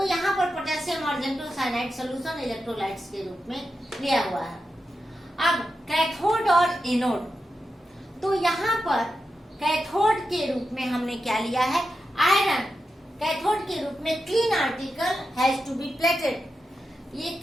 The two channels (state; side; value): normal; both; correlation 0.89